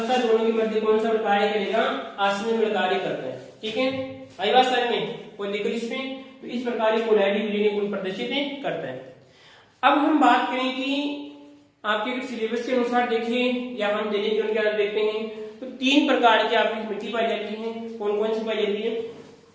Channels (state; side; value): identical; both; correlation 1.00